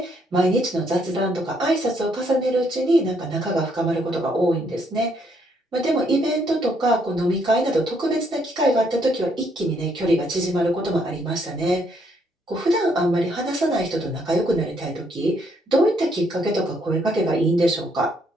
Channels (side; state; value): both; normal; correlation 0.71